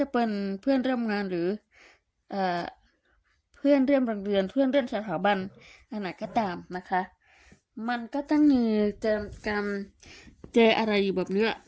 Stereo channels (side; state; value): both; identical; correlation 1.00